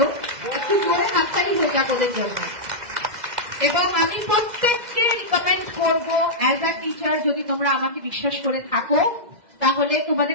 একটু জোরে হাততালি হয়ে যাক ওদের জন্য। এবং আমি প্রত্যেককে রিকমেন্ড করবো, অ্যাজ আ টিচার যদি তোমরা আমাকে বিশ্বাস করে থাকো, তাহলে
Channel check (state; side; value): late; left; 2.0 ms